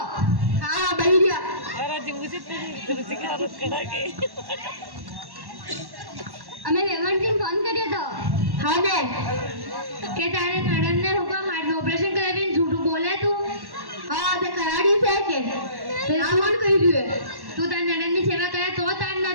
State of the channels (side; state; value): left; late; 1.1 ms